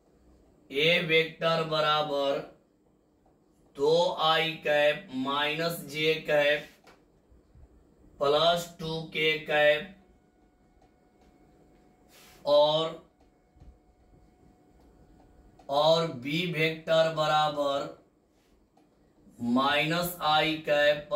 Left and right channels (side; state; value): both; identical; correlation 1.00